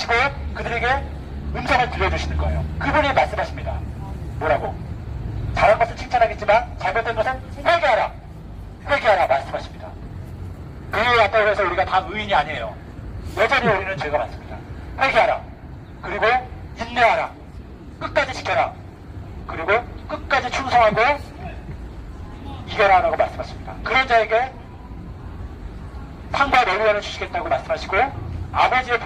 그들에게 음성을 들려주시는 거예요. 그분이 말씀하십니다. 뭐라고? 잘한 것은 칭찬하겠지만 잘못된 것은 회개하라. 회개하라 말씀하십니다. 교회에 왔다고 해서 우리가 다 의인이 아니에요. 여전히 우리는 죄가 많습니다. 회개하라. 그리고 인내하라. 끝까지 지켜라. 그리고 끝까지 충성하고 이겨라 라고 말씀하십니다. 그런 자에게 상과 노루화를 주시겠다고 말씀하시고 아버지의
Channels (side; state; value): both; identical; correlation 1.00